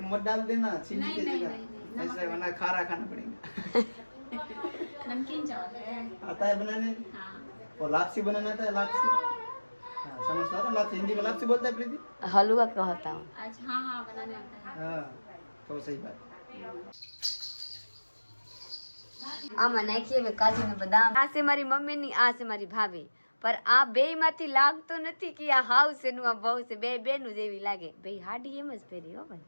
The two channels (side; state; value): both; inverted; correlation -1.00